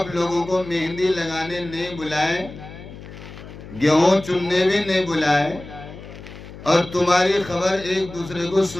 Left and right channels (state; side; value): noise; left; hum, 15 dB below the sound